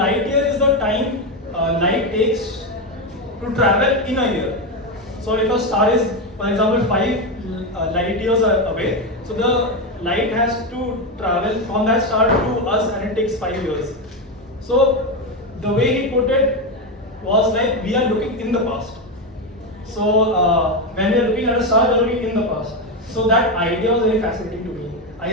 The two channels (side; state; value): both; normal; correlation 0.11